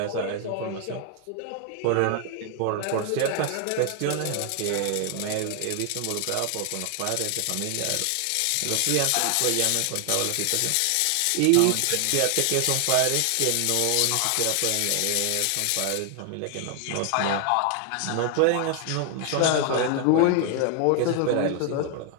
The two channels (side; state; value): both; different; correlation 0.00